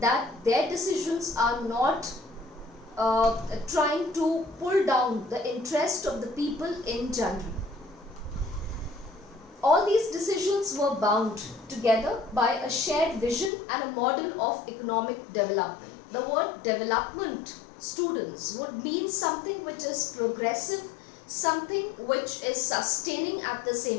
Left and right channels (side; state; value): right; drops out; at 13.5 s